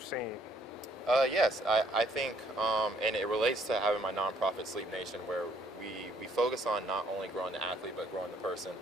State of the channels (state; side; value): normal; both; correlation 0.65